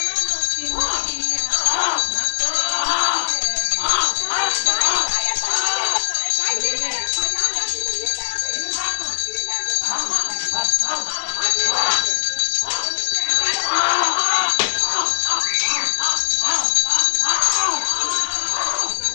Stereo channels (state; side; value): silent; right; 65 dB below the other